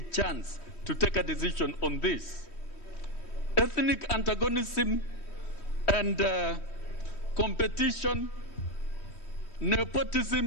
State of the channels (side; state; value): right; late; 3.1 ms